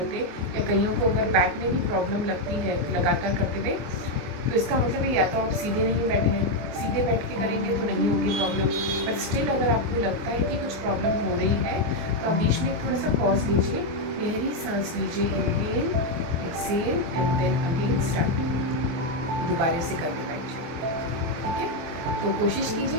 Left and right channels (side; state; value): left; late; 24 ms